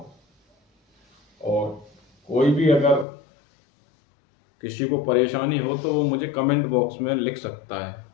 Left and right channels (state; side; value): drops out; right; at 3.1 s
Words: और कोई भी अगर किसी को परेशानी हो तो वो मुझे कमेंट बॉक्स में लिख सकता है।